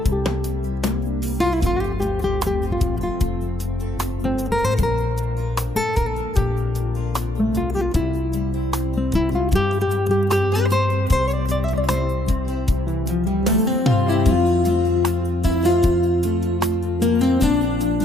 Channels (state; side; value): normal; both; correlation 0.72